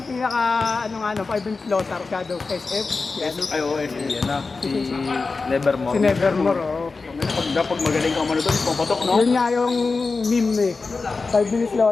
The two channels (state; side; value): quieter; right; 4.1 dB